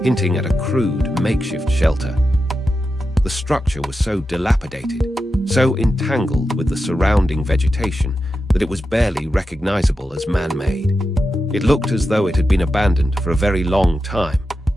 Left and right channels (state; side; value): normal; both; correlation 0.90